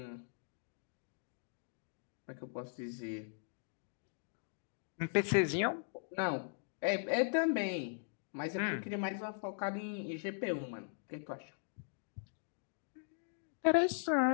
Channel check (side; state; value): right; silent; digital silence